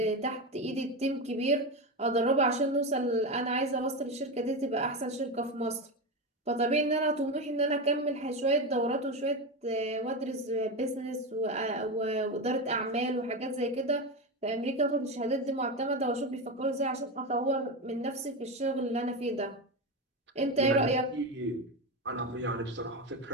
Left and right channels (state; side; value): normal; both; correlation 0.16